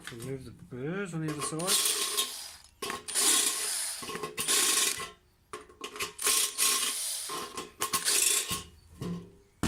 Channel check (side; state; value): both; identical; correlation 1.00